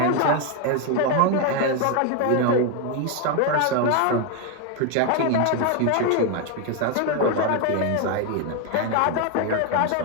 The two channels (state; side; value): different; both; correlation 0.01